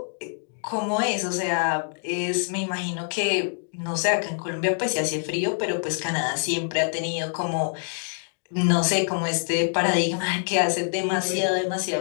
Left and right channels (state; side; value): silent; right; 61 dB below the other